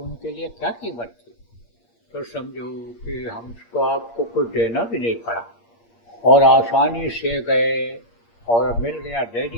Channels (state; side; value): late; right; 8.6 ms